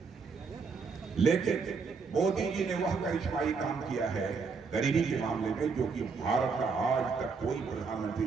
लेकिन मोदी जी ने वह करिश्माई काम किया है गरीबी के मामले में जो कि भारत का आज तक कोई प्रधानमंत्री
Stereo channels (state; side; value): quieter; left; 5.0 dB